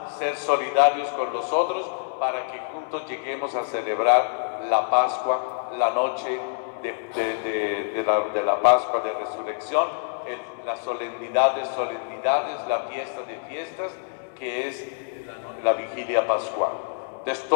ser solidarios con los otros, para que juntos lleguemos a celebrar la Pascua, la noche de la Pascua de Resurrección, la solemnidad de solemnidades, la fiesta de fiestas, que es la vigilia pascual. Entonces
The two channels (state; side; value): silent; right; 60 dB below the other